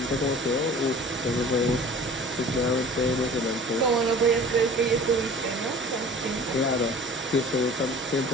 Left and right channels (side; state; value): both; normal; correlation 0.44